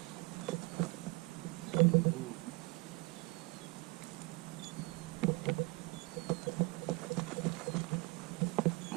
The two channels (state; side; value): quieter; left; 25.3 dB